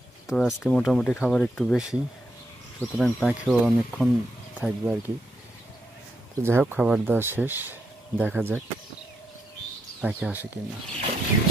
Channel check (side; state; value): both; normal; correlation 0.81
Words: তো আজকে মোটামুটি খাবার একটু বেশি, সুতরাং পাখিও অনেকক্ষণ থাকবে আর কি। তো যাই হোক, খাবার দেওয়া শেষ, দেখা যাক পাখি আসে কিনা।